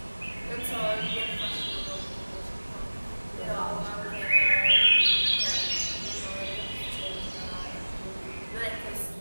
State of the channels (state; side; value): inverted; both; correlation -1.00